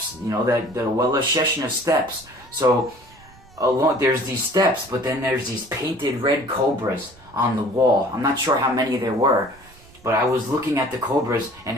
you know, that the Well of Sheshna steps. So there's these steps, but then there's these painted red cobras on the wall. I'm not sure how many there were, but I was looking at the cobras, and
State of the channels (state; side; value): noise; right; rumble, 25 dB below the sound